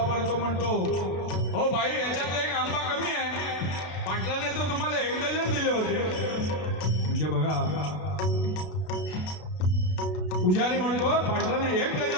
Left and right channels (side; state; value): right; late; 32 ms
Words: तो म्हणतो, हो बाई याच्यात 1 आंबा कमी आहे, पाटलाने तर तुम्हाला 1 डझन दिले होते. म्हणजे बघा, पुजारी म्हणतो पाटलाने 1